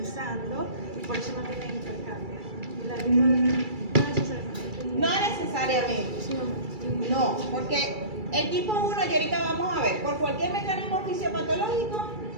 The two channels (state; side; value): late; left; 2.3 ms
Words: y por eso no tiene hipercambia. Y la no necesariamente. No necesariamente. No, porque el tipo 1, y ahorita vamos a ver, por cualquier mecanismo fisiopatológico,